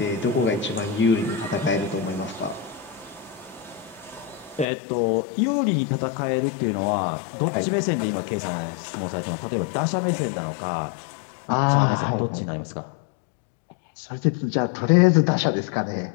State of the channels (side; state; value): right; drops out; at 4.7 s